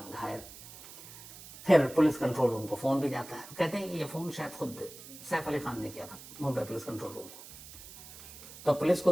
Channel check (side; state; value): right; noise; hiss, 16 dB below the sound